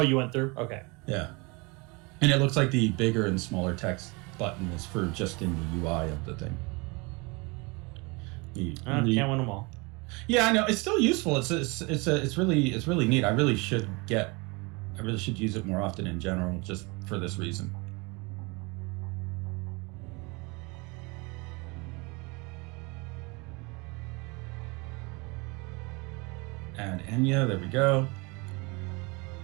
you went through? Okay. Yeah. And it looks like the bigger and smaller text button is for just in the UI of the thing. Can't win them all. Yeah, I know. It's still useful. It's really neat. I really should use it more often in general, just for this reason. Add Enya, there we go.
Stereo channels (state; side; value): quieter; left; 27.7 dB